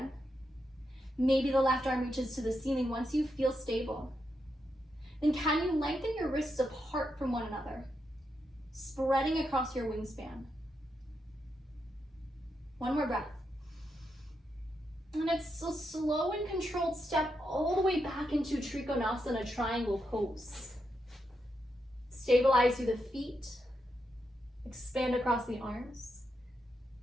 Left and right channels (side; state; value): both; normal; correlation 0.83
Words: Maybe the left arm reaches to the ceiling once you feel stable. Then can you lengthen your wrists apart from one another, spreading across your wingspan? One more breath. And it's a slow and controlled step all the way back into Trikonasana triangle pose. Stabilize through the feet, expand across the arms,